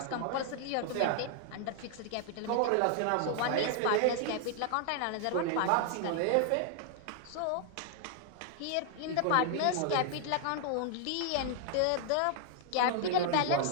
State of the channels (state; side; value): different; both; correlation 0.00